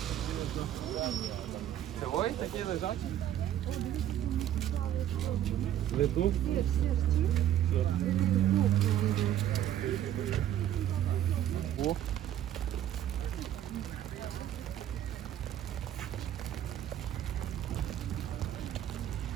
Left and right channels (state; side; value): quieter; left; 11.5 dB